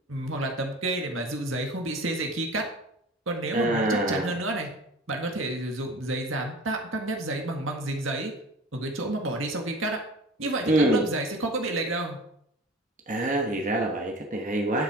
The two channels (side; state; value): both; normal; correlation 0.40